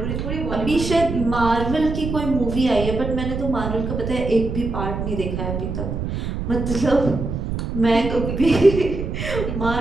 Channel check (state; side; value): noise; right; rumble, 4 dB below the sound